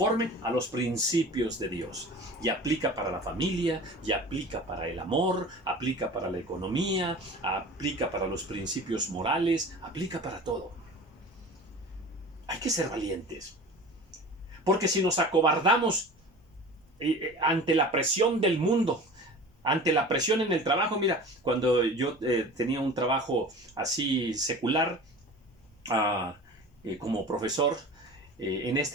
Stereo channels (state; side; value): normal; both; correlation 0.38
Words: a los principios de Dios. Y aplica para la familia, y aplica para el amor, aplica para la economía, aplica para los principios morales, aplica para todo. Hay que ser valientes. Porque si nos acobardamos ante la presión del mundo, ante la presión en el trabajo, mira, cuando yo tenía un trabajo así secular, como profesor, en